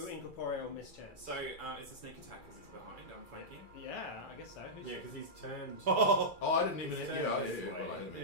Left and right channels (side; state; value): right; late; 2.3 ms